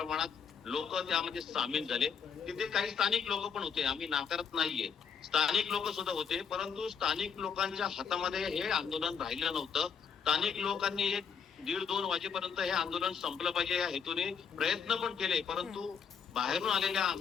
लोक त्यामध्ये सामील झाले. तिथे काही स्थानिक लोक पण होते, आम्ही नाकारत नाहीये, स्थानिक लोक सुद्धा होते, परंतु स्थानिक लोकांच्या हातामध्ये हे आंदोलन राहिलं नव्हतं. स्थानिक लोकांनी 1:30-2 वाजेपर्यंत हे आंदोलन संपलं पाहिजे या हेतूने प्रयत्न पण केले, परंतु बाहेरून आलेल्या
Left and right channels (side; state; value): right; quieter; 6.6 dB